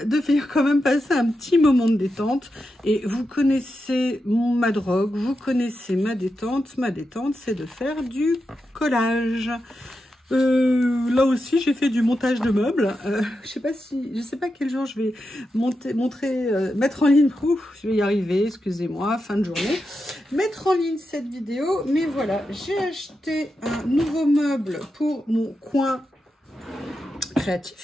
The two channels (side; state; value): both; normal; correlation 0.88